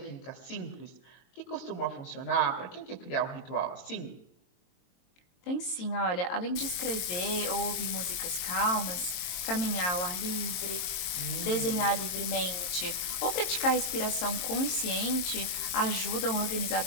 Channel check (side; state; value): right; late; 23 ms